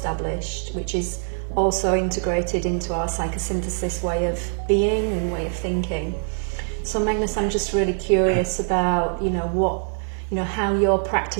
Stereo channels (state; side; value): silent; left; 63 dB below the other